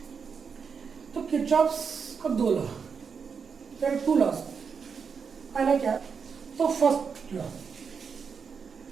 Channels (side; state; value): left; quieter; 6.0 dB